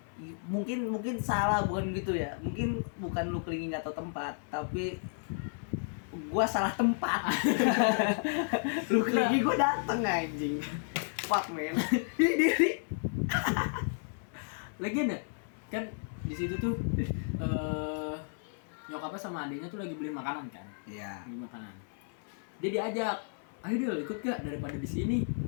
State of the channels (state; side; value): silent; right; 56 dB below the other